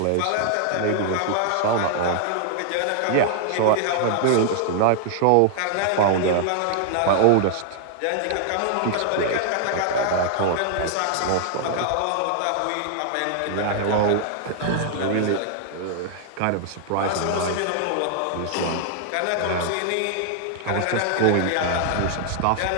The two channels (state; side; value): different; both; correlation 0.00